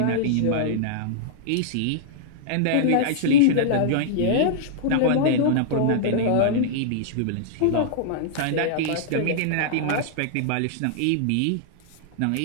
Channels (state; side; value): different; both; correlation -0.02